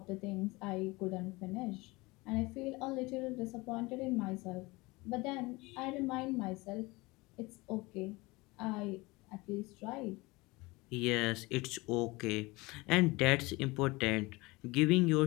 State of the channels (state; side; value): quieter; right; 23.2 dB